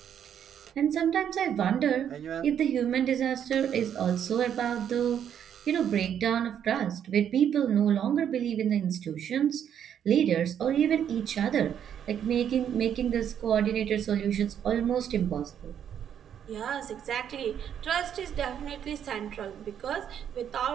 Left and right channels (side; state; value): left; quieter; 9.1 dB